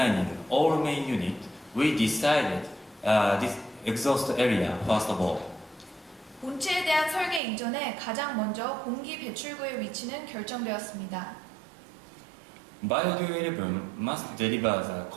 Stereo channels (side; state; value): left; drops out; at 7.4 s